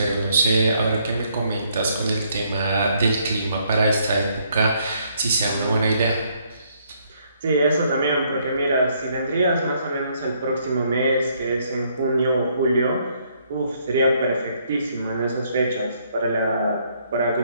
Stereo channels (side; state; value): both; inverted; correlation -0.69